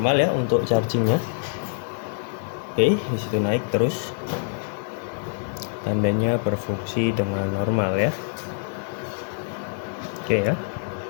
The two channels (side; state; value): right; silent; digital silence